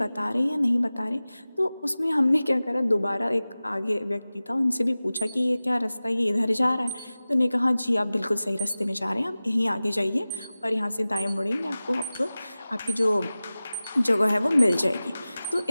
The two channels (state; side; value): inverted; both; correlation -0.97